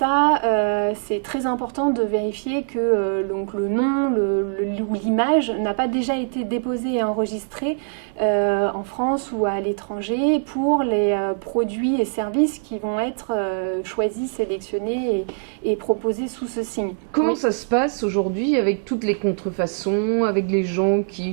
très important de vérifier que donc le nom ou l'image n'a pas déjà été déposé et enregistré en France ou à l'étranger pour les produits et services qui vont être choisis, sélectionnés et proposés sous ce signe. Comment ça se passe aujourd'hui avec toutes les contrefaçons, avec les gens qui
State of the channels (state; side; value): silent; left; 58 dB below the other